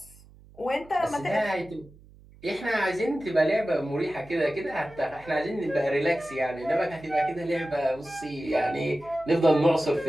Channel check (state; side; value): noise; right; hum, 24 dB below the sound